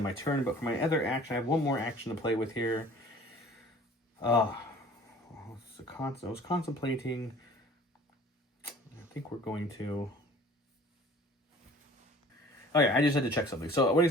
my turn. But for my other action, I have one more action to play with here. I was contemplating. I think we're going to. Oh yeah, I just had to check something. So what he's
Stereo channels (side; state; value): both; normal; correlation 0.48